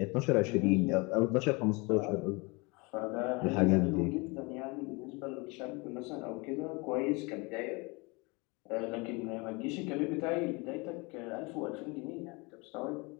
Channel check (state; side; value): quieter; right; 27.7 dB